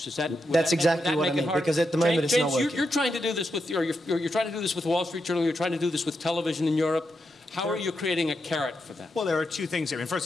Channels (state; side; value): normal; both; correlation 0.85